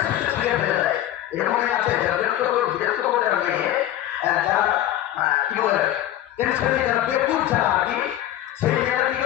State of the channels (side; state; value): right; quieter; 13.0 dB